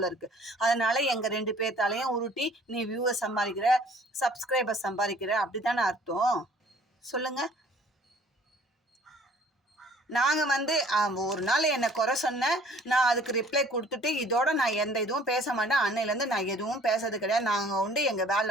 இருக்குது. அதனால் எங்கள் 2 பேர்த்தாலையும் உருட்டி நீ வியூவர் சம்பாதிக்கிற, சப்ஸ்கிரைபர் சம்பாதிக்கிற அப்படி தானே அர்த்தம்? சொல்லுங்கள். நாங்கள் வந்து ஒரு நாள் என்னை குறை சொன்னேன், நான் அதுக்கு ரிப்ளை கொடுத்துட்டு இதோட நான் எந்த இதுவும் பேச மாட்டேன். அன்னையிலேருந்து நான் எதுவும் பேசுறது கிடையாது. நாங்கள் உண்டு எங்கள்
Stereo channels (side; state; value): both; normal; correlation 0.54